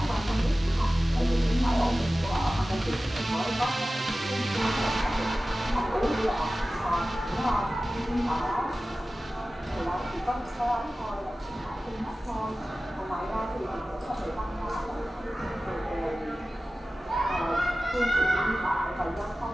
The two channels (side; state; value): both; normal; correlation 0.96